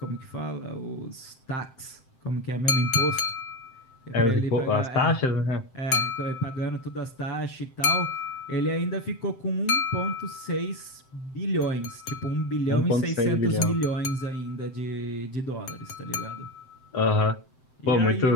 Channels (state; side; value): late; right; 7.7 ms